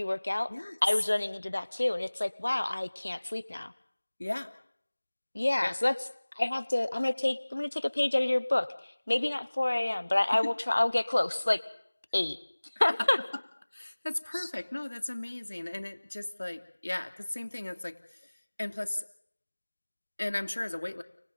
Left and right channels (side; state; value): both; inverted; correlation -1.00